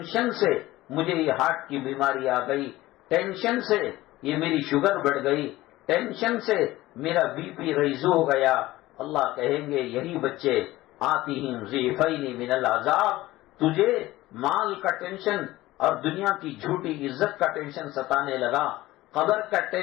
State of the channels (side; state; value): right; quieter; 17.4 dB